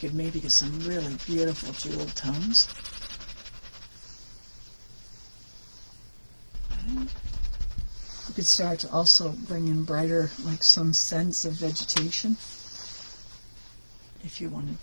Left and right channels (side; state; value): both; inverted; correlation -1.00